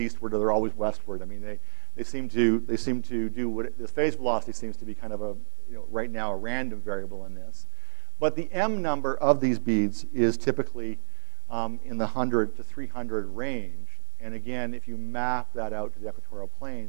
or they're always westward. I mean, they seem to do what the phase velocity seems to be kind of a, right now, a random variable in this. But the M number of these beads is typically in the 100 to 300 range. And again, if you map that out to the equatorial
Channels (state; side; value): silent; left; 57 dB below the other